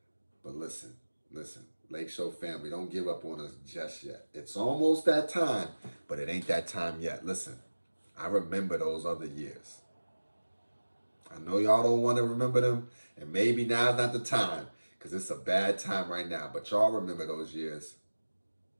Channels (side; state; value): both; inverted; correlation -1.00